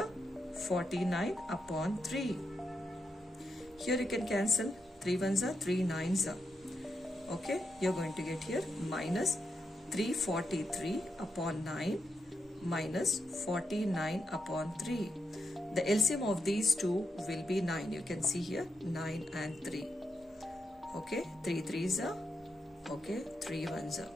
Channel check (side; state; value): both; normal; correlation 0.84